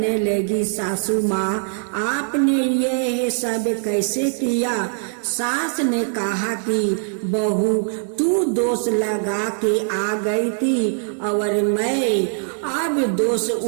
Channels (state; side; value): silent; left; 65 dB below the other